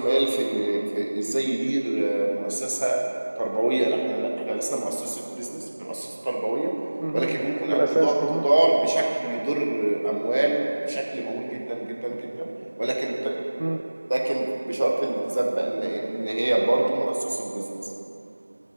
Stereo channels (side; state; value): both; inverted; correlation -1.00